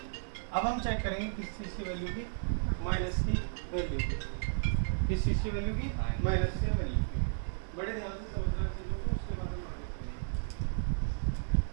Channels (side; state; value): left; silent; digital silence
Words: अब हम चेक करेंगे किस चीज़ की वैल्यू की? माइनस की वैल्यू की। किस चीज़ की वैल्यू की? माइनस की वैल्यू की। बड़े ध्यान से समझना चीज़ों को, उसके बाद हम आगे चलेंगे।